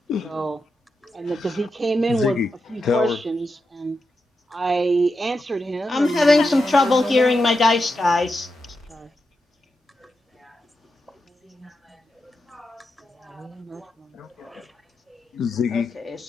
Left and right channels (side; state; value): both; normal; correlation 0.87